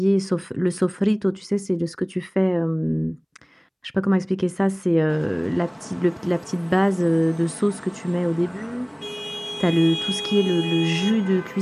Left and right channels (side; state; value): both; identical; correlation 1.00